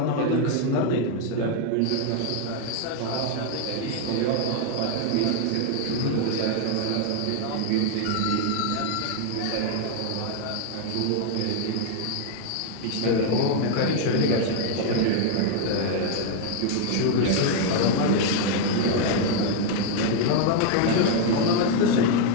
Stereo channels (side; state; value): both; different; correlation 0.00